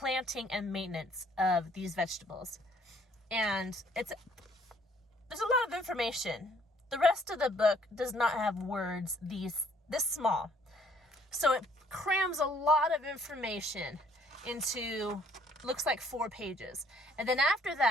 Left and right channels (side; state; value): both; normal; correlation 0.62